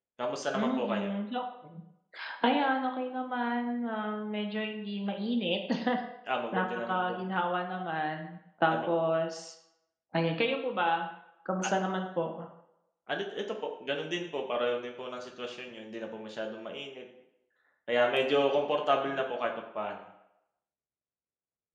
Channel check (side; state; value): both; identical; correlation 1.00